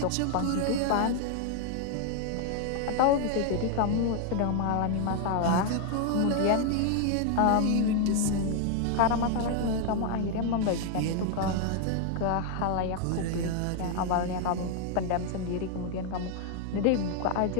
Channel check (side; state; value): both; different; correlation 0.00